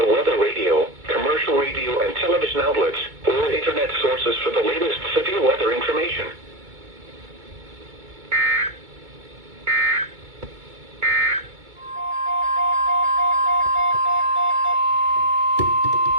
weather radio, commercial radio and television outlets, or internet sources for the latest severe weather information.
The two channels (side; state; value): left; late; 2.2 ms